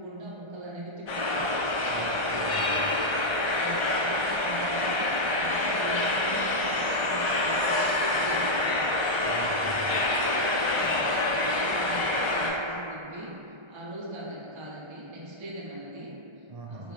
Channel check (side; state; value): left; late; 1.3 ms